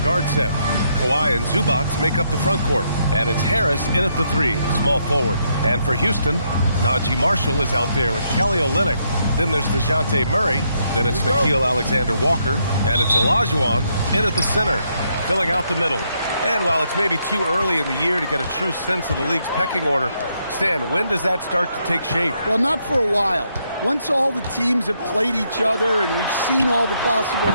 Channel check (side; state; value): both; inverted; correlation -0.76